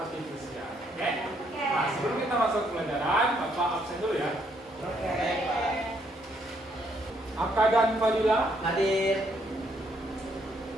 Oke? Nah, sebelum kita masuk pelajaran, Bapak absen dulu ya. Aka dan Fadila, Hadir.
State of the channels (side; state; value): both; normal; correlation 0.71